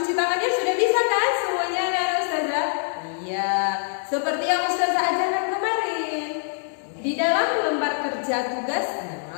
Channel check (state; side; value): silent; right; digital silence